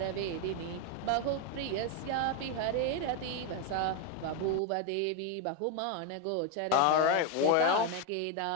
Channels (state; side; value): different; both; correlation 0.02